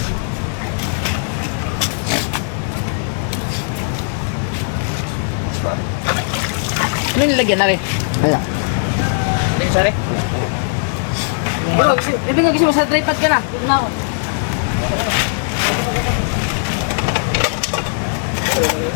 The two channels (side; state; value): right; silent; digital silence